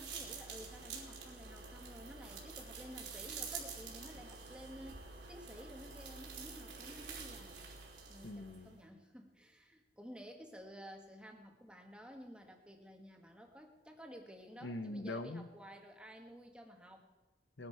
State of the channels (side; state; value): both; normal; correlation 0.44